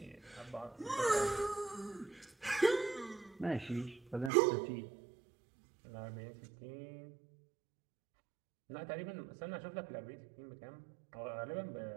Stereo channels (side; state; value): left; drops out; at 4.3 s